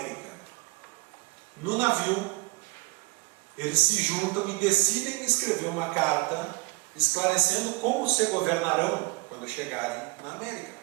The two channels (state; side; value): quieter; left; 25.3 dB